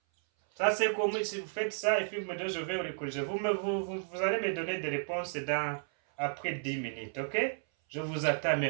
Ça, c'est comme si vous faites ça et puis vous me dites, je vais le corriger. Vous allez me donner des réponses après 10 minutes, ok? Je vous attends,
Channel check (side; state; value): left; silent; 56 dB below the other